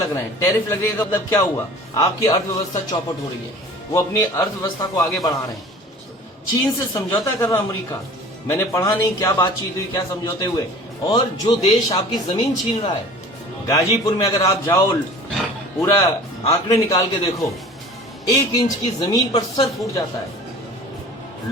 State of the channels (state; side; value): normal; both; correlation 0.43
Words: रहे हैं। टैरिफ लगने का मतलब क्या हुआ? आपकी अर्थव्यवस्था चौपट हो रही है। वो अपनी अर्थव्यवस्था को आगे बढ़ा रहे हैं। चीन से समझौता कर रहा अमेरिका। मैंने पढ़ा नहीं क्या बातचीत हुई, क्या समझौते हुए। और जो देश आपकी जमीन छीन रहा है, गाजीपुर में अगर आप जाओ, पूरा आंकड़े निकाल के देखो, 1 इंच की जमीन पर सर फूट जाता है।